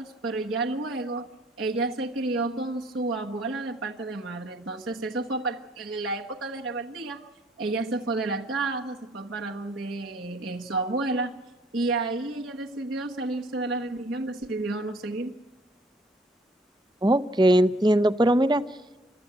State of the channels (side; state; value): both; normal; correlation 0.60